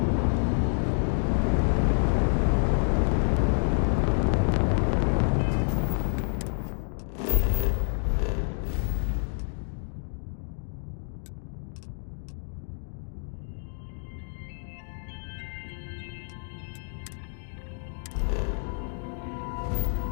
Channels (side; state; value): right; silent; digital silence